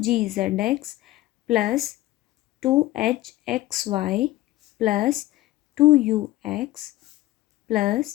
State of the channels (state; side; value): quieter; right; 16.7 dB